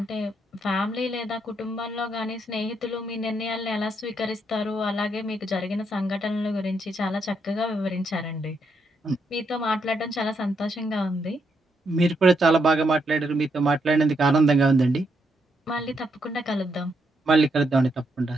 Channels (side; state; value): both; normal; correlation 0.78